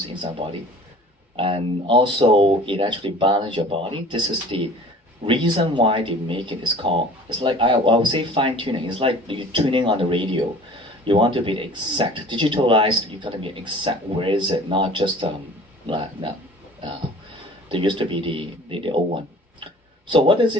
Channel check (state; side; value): normal; both; correlation 0.46